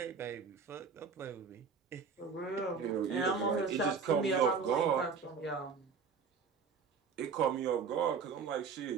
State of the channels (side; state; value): left; quieter; 5.5 dB